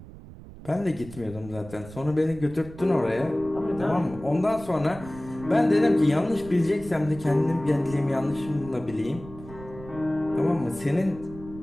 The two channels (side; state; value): right; noise; rumble, 16 dB below the sound